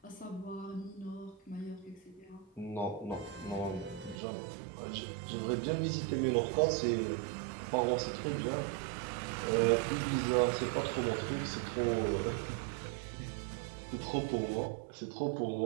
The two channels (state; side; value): drops out; left; at 4.2 s